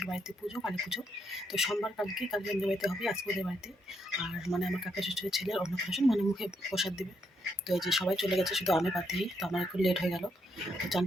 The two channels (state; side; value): normal; both; correlation 0.77